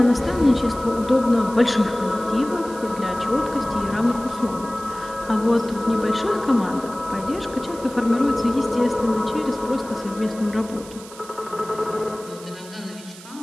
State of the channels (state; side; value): noise; right; hiss, 18 dB below the sound